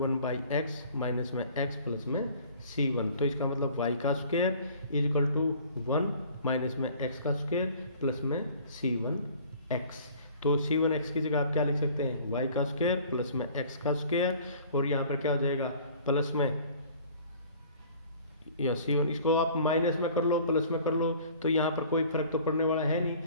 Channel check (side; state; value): both; inverted; correlation -0.50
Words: minus में x प्लस में c1। तो इसका मतलब y का square is equal to 1 minus में x का स्क्वेयर प्लस में c1x। तो c1x की जगह आप क्या लिख सकते हैं, y का स्क्वेयर प्लस में x का स्क्वेयर, और यहाँ पर क्या हो जाएगा प्लस में या c1, इसको आप माइनस में कर लो प्लस में कर लो, तो यहाँ पर कोई फर्क तो पड़ने वाला है नहीं,